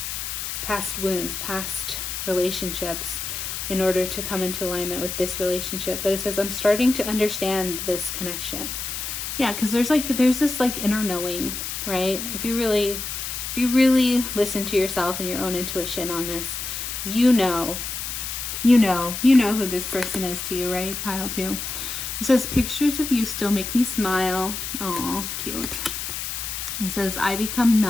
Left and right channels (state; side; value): noise; left; hiss, 5 dB below the sound